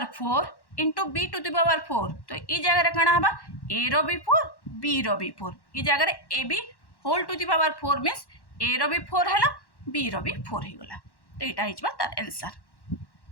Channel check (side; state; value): right; late; 1.1 ms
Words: 4 into b to the power 4। तो ई जगह काଣା हबा a रो भी 4 b रो भी 4 ई जगह a b whole to the power 4 means a रो भी 4 है b रो भी 4 हो गला तो यहाँ हो तार आंसर।